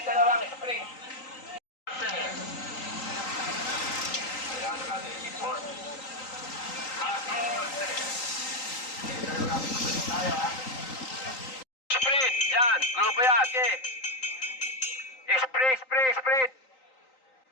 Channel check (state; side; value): late; right; 3.8 ms